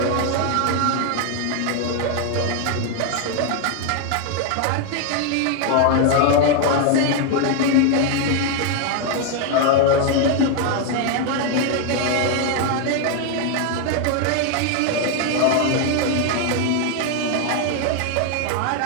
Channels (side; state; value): both; different; correlation 0.01